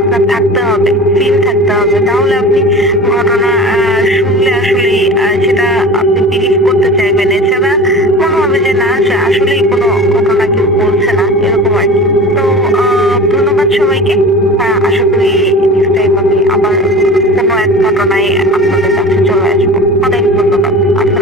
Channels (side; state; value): both; normal; correlation 0.36